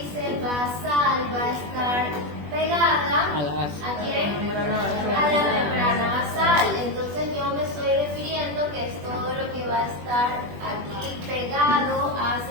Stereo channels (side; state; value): left; late; 20 ms